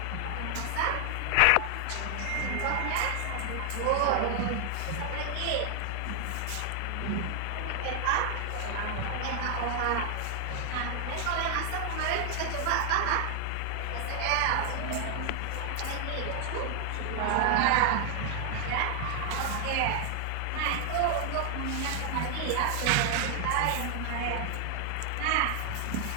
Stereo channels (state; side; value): different; both; correlation 0.00